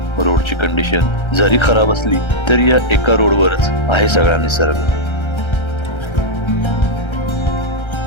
रोडची कंडिशन जरी खराब असली तरी या एका रोडवरच आहे सगळा निसर्ग.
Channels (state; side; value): late; right; 1.3 ms